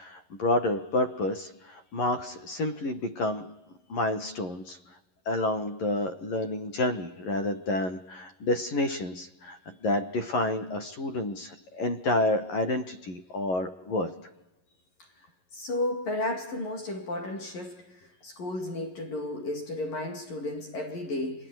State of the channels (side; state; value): right; late; 11 ms